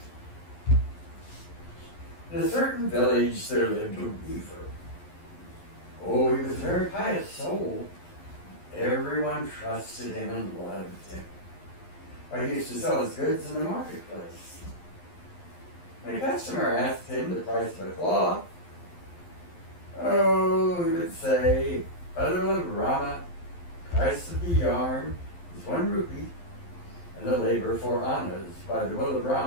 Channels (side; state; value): right; late; 11 ms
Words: In a certain village there lived a weaver. Oh, he was a very pious soul. Everyone trusted him and loved him. He used to sell his goods in the marketplace. When a customer asked him the price of a cloth, he would say, by the will of Rama, the price of the yarn is 1 rupee, and the labor 4 annas. By the will of